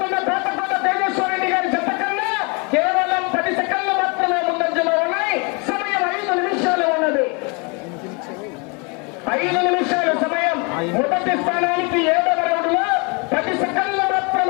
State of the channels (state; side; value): quieter; right; 31.9 dB